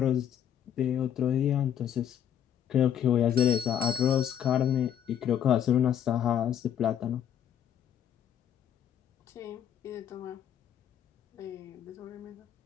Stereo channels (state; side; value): quieter; right; 9.5 dB